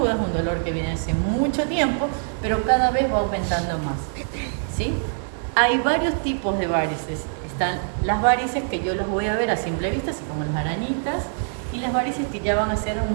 es un dolor que viene hace mucho tiempo, pero cada vez va aumentando más, ¿sí? Hay varios tipos de varices. Están las varices que yo las voy a ver a simple vista, así como las arañitas, y las varices que ya van a ser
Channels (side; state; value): left; silent; digital silence